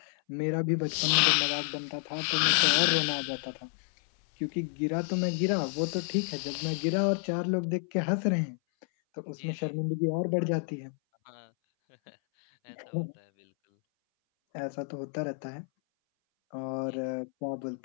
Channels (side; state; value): right; silent; 58 dB below the other